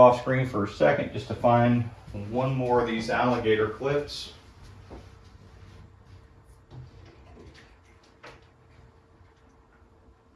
off screen for a second just to find one more of these alligator clips.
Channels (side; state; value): both; identical; correlation 1.00